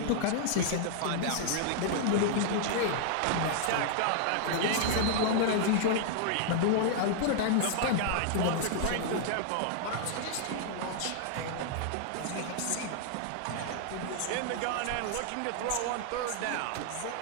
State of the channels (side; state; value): both; different; correlation -0.01